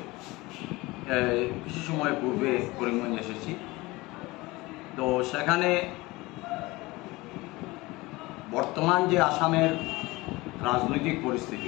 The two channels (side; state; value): right; quieter; 21.5 dB